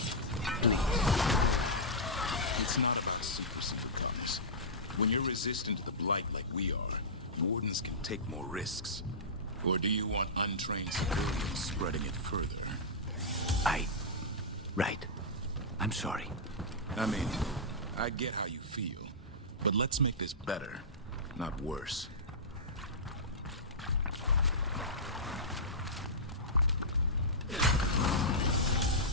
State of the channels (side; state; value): both; normal; correlation -0.14